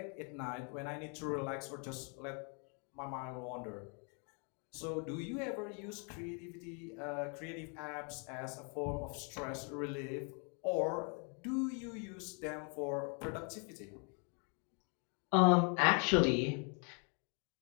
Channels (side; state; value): right; quieter; 37.5 dB